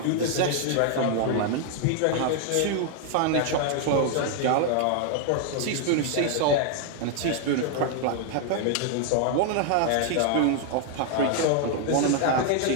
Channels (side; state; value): both; different; correlation 0.00